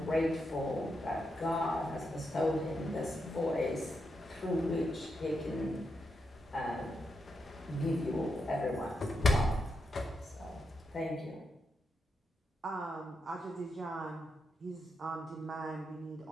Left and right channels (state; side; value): normal; both; correlation 0.84